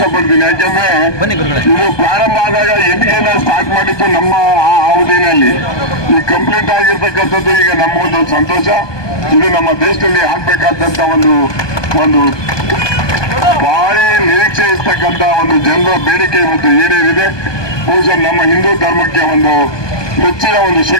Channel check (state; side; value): late; right; 1.2 ms